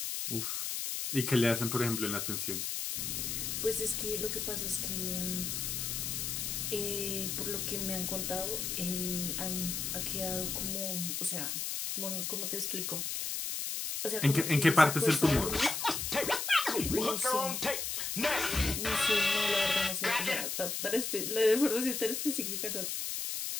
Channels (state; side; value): noise; left; hiss, 2 dB below the sound